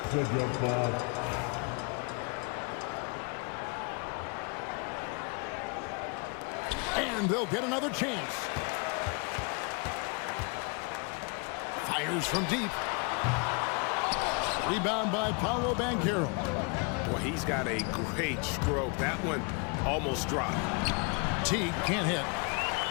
a jump ball. And they'll get another chance. Fires from deep. Rebound by Paolo Banchero. Well, he's got a great stroke. That one almost dropped. Teague can't hit.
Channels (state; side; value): quieter; right; 33.3 dB